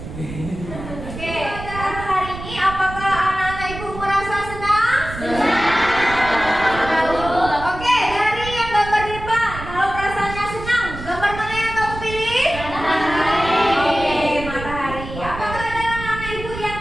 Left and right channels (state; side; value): noise; right; rumble, 10 dB below the sound